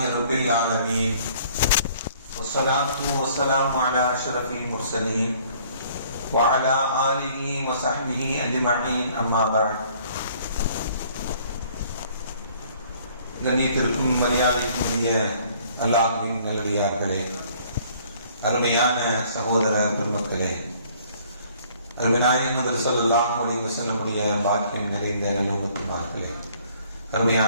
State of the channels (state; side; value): inverted; both; correlation -0.59